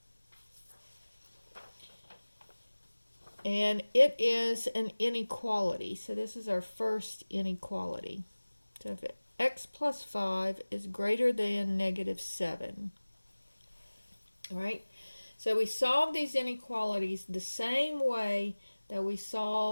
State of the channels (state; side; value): inverted; both; correlation -1.00